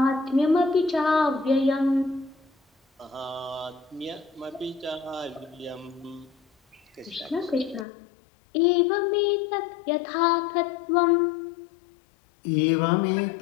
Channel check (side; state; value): right; drops out; at 7.9 s